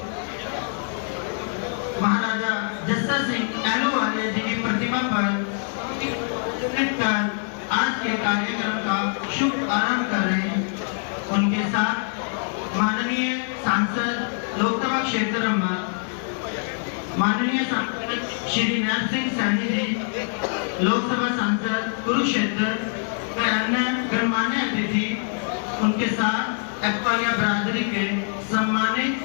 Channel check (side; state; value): right; silent; 57 dB below the other